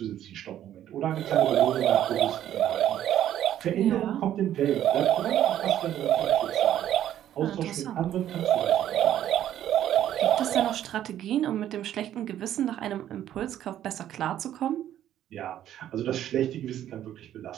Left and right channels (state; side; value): quieter; left; 11.5 dB